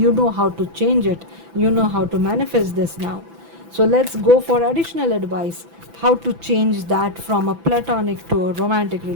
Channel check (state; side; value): late; left; 6.0 ms